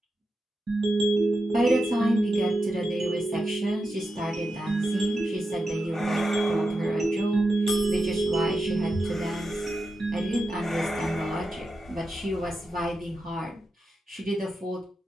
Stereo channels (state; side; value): normal; both; correlation 0.89